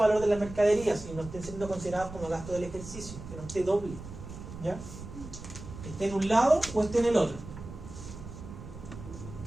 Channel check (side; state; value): right; noise; rumble, 12 dB below the sound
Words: de las mercaderías y no estén siendo considerados como gasto del ejercicio, que no esté doble. ¿Ya? Que esté en un lado o esté en el otro.